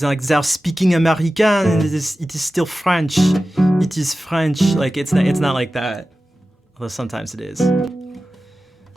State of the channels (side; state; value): both; normal; correlation 0.95